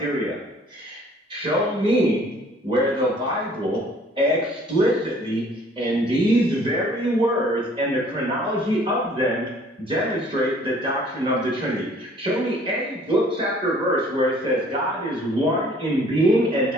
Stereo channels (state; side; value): normal; both; correlation 0.56